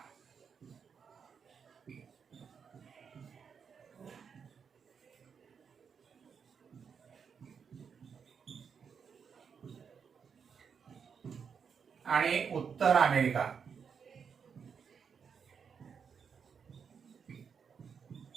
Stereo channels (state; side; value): quieter; left; 6.6 dB